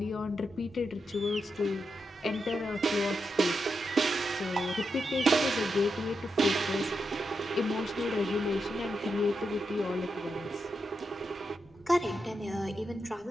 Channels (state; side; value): normal; both; correlation 0.86